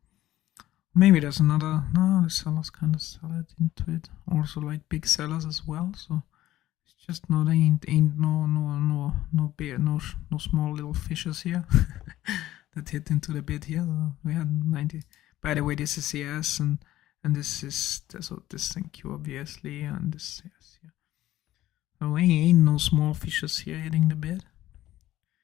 Maybe there's another. No, the sellers kind of sell it into it. Also like big sellers as well. So it's just no, ain't no big, no small little fishes here that hit into the bid here. So we had 90. By the way, this is CS and this is so this NQ obviously, and this is CS here. So ain't no small fishes here hitting the bid.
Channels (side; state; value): right; quieter; 14.6 dB